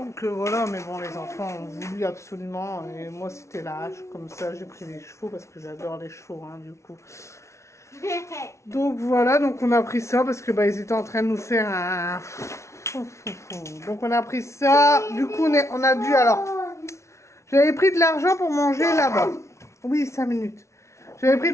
voilà, mais bon les enfants ont voulu absolument et moi c'était la hache, comme ça j'ai pris les chevaux parce que j'adore les chevaux, hein, du coup. Donc voilà, donc on a pris ça parce que ils étaient en train de nous faire un... Donc on a pris ça, du coup on a dû alors... J'avais pris de l'argent pour manger là-bas. Oui, 5 minutes. J'avais pris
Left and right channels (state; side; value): late; right; 0.14 ms